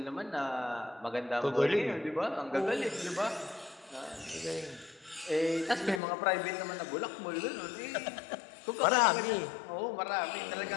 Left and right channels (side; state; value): right; drops out; at 6.0 s